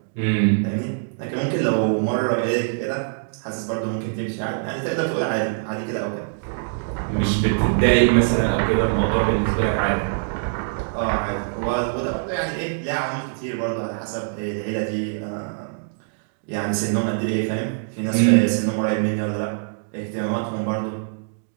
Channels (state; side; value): silent; left; digital silence